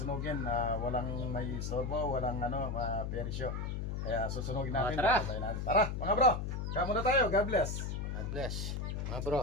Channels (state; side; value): noise; left; hum, 3 dB below the sound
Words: Walang may istorbo, walang persyo. Kaya susunugin natin. Tara. Tara mga bro. Kaya muna tayo. God bless. God bless. Mga bro.